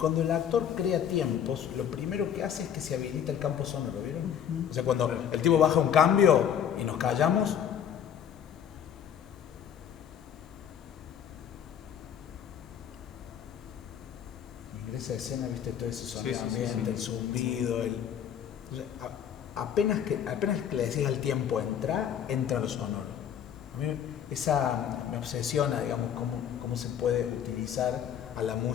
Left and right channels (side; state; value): right; quieter; 8.8 dB